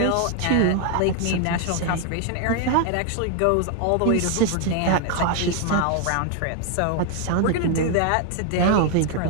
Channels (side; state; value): both; different; correlation 0.00